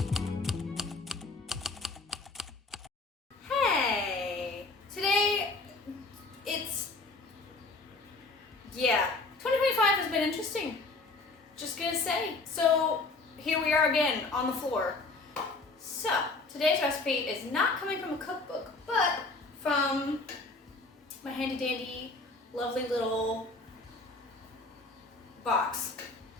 Hey, today yeah, 2025 has been interesting. Just gonna say. So here we are again on the floor. So today's recipe is not coming from a cookbook, but from my handy dandy, lovely little box.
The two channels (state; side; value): quieter; right; 3.5 dB